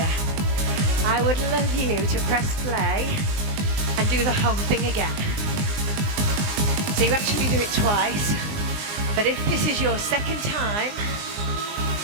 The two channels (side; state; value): left; late; 19 ms